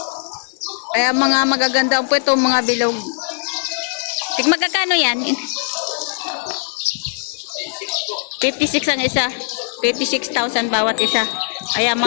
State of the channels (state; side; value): silent; right; 63 dB below the other